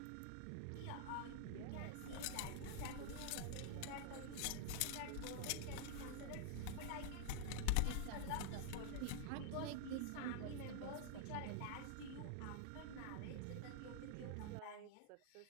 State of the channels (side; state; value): both; different; correlation 0.00